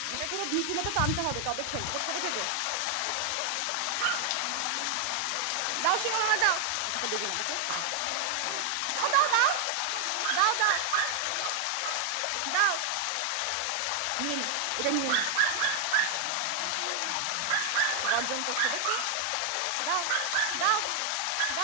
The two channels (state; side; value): different; both; correlation 0.00